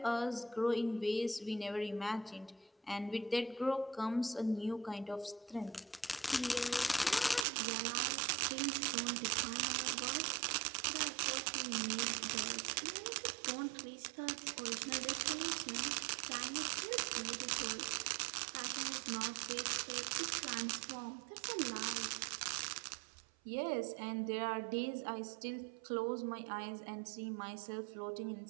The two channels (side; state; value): left; drops out; at 7.5 s